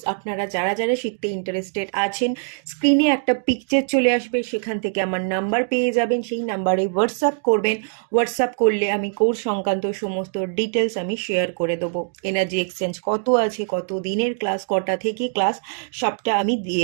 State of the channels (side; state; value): left; silent; digital silence